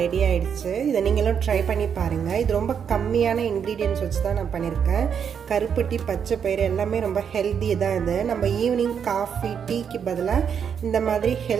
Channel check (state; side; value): quieter; left; 7.5 dB